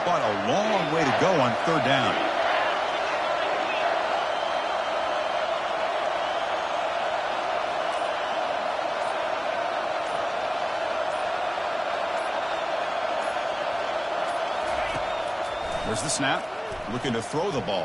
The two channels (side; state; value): both; identical; correlation 1.00